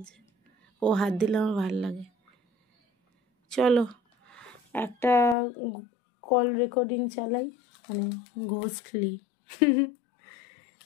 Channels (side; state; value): right; drops out; at 5.4 s